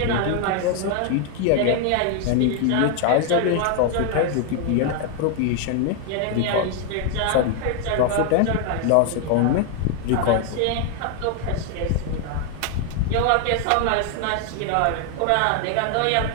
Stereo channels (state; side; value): different; both; correlation 0.00